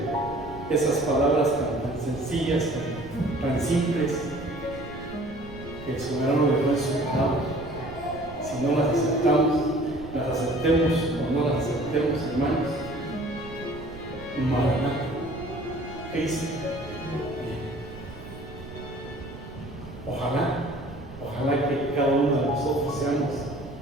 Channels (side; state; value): right; noise; rumble, 15 dB below the sound